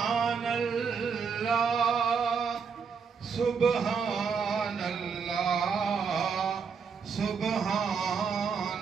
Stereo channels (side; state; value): left; quieter; 5.9 dB